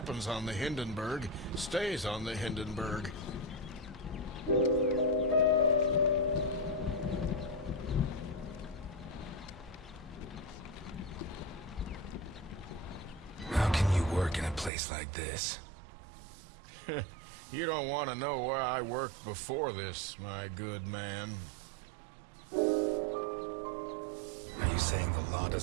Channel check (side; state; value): left; drops out; at 14.7 s